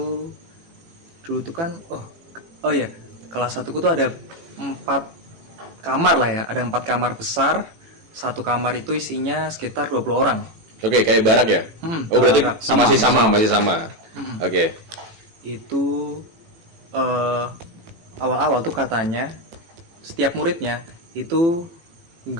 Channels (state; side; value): late; left; 18 ms